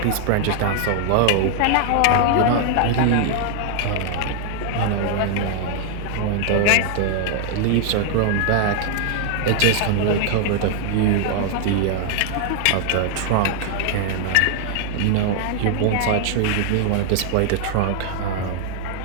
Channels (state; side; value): different; both; correlation 0.00